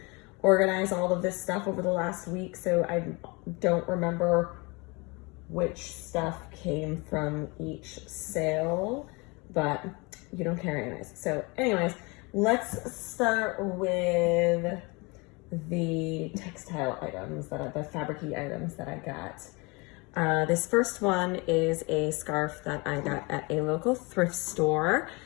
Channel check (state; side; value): quieter; right; 27.5 dB